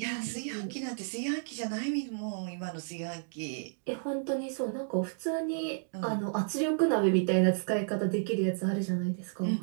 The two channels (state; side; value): silent; left; digital silence